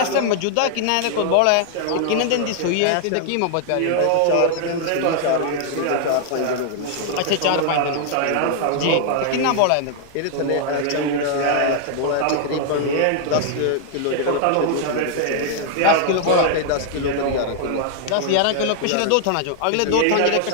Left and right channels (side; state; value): both; different; correlation -0.01